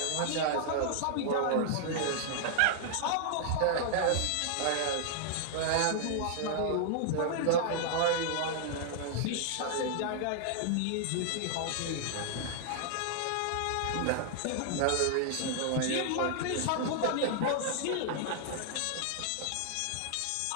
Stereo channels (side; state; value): both; different; correlation -0.01